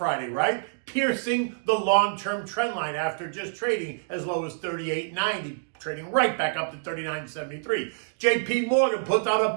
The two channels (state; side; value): silent; left; digital silence